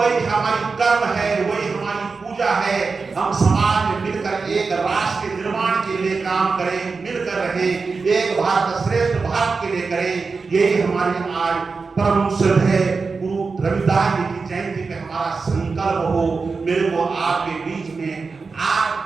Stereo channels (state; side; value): quieter; left; 4.5 dB